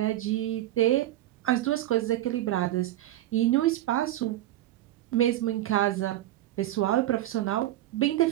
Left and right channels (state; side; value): quieter; left; 14.2 dB